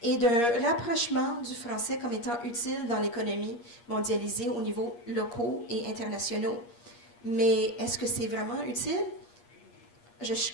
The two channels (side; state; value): right; late; 8.5 ms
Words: et d'un rapprochement du français comme étant utile dans l'économie mondialisée au niveau locaux et internationaux. Mais est-ce que c'est vraiment utile? Je